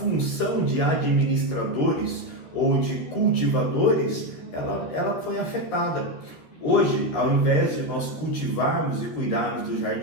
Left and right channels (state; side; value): late; right; 13 ms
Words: de administradores ou de cultivadores, ela foi afetada. Hoje, ao invés de nós cultivarmos e cuidarmos do